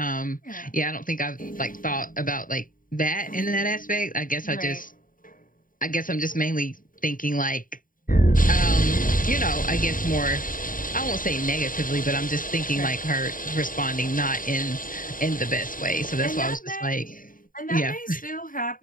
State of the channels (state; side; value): late; right; 0.40 ms